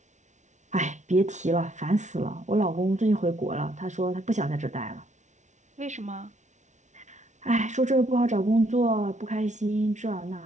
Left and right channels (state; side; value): late; left; 0.35 ms